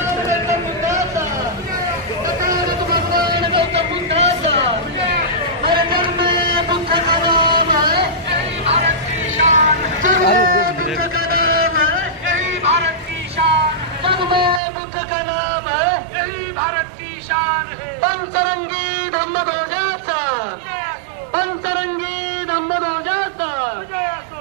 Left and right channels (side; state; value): left; drops out; at 14.6 s